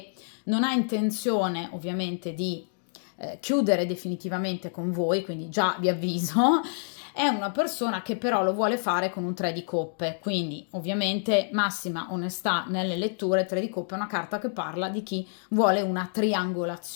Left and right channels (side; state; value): right; silent; digital silence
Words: non ha intenzione ovviamente di chiudere definitivamente con voi, quindi già vi avviso. È una persona che però lo vuole fare con un 3 di coppe, quindi ovviamente massima onestà nelle letture. 3 di coppe è una carta che parla di chi vuole una